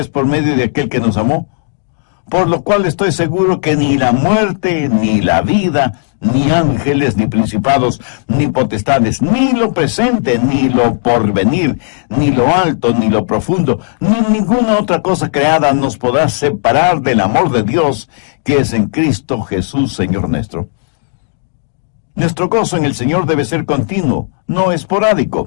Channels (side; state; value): right; silent; digital silence